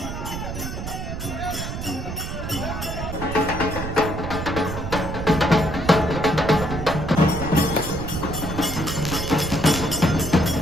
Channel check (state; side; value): noise; right; rumble, 6 dB below the sound